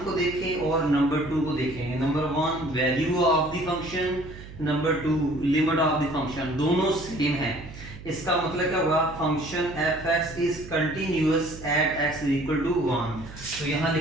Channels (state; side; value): noise; right; hum, 15 dB below the sound